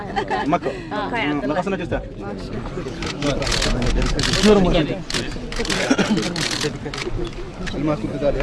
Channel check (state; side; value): identical; both; correlation 1.00